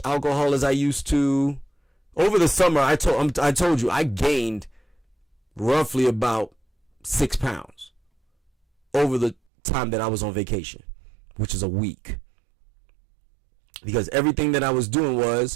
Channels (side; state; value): left; drops out; at 9.3 s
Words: alcohol as I used to. Over the summer, I told you I gained roughly about 6 pounds over the time that I was on vacation, which is a week. Because everything that I was doing